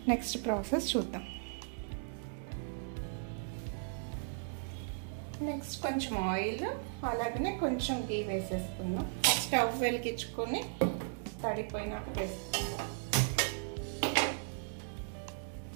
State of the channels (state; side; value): silent; left; digital silence